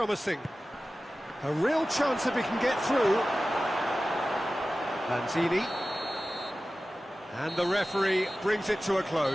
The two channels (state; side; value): normal; both; correlation 0.95